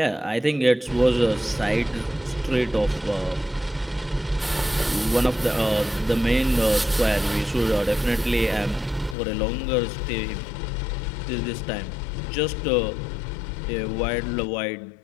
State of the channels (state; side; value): drops out; right; at 9.2 s